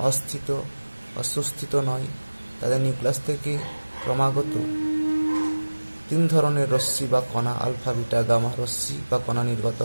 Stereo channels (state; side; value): inverted; both; correlation -1.00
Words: অস্থিত, সুস্থিত নয়। তাদের নিউক্লিয়াস থেকে ক্রমাগত 3 ধরনের রশ্মি বা কণা, আলফা, বিটা, গামা রশ্মি বা কণা নির্গত